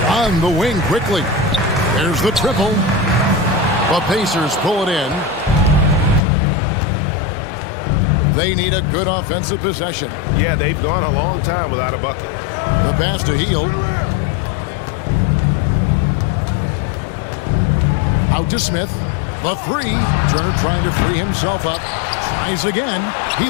On the wing quickly. There's the triple. The Pacers pull it in. They need a good offensive possession. Yeah, they've gone a long time without a bucket. The pass to Hield. Out to Smith. The 3. Turner trying to free himself up. Tries again. He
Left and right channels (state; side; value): drops out; right; at 6.2 s